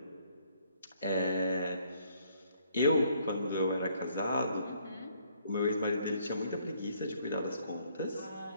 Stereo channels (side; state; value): both; inverted; correlation -0.66